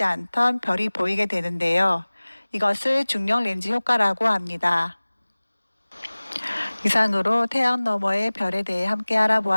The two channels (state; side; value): inverted; both; correlation -1.00